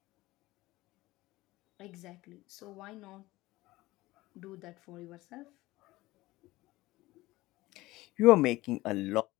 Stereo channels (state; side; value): quieter; right; 18.8 dB